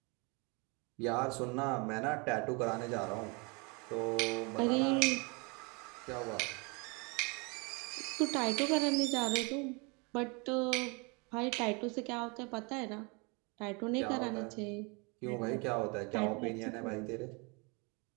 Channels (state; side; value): quieter; left; 30.4 dB